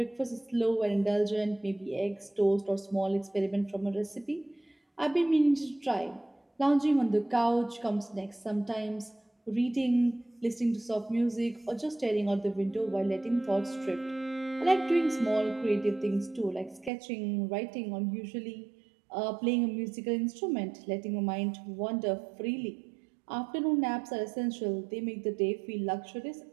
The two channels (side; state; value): left; drops out; at 16.9 s